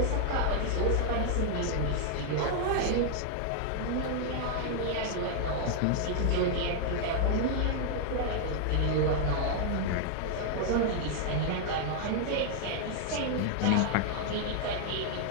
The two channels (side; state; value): both; different; correlation 0.00